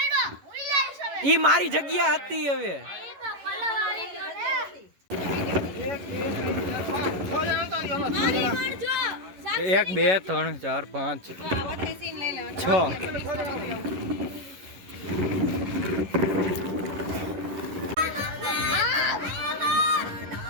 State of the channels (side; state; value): left; late; 11 ms